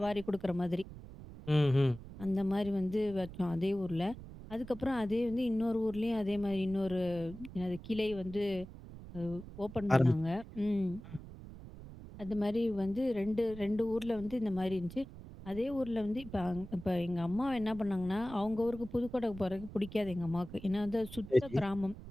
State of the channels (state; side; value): noise; right; rumble, 14 dB below the sound